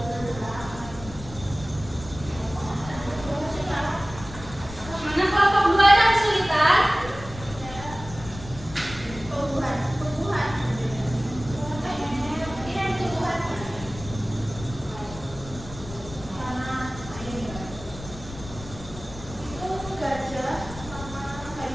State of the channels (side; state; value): left; noise; rumble, 13 dB below the sound